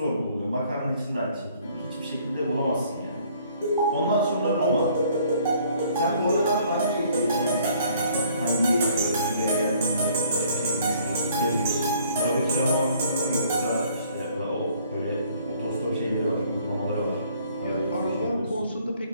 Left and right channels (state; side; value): inverted; both; correlation -0.60